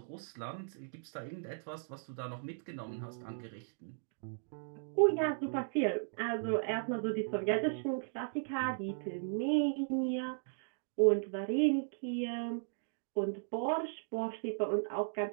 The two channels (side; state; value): left; silent; digital silence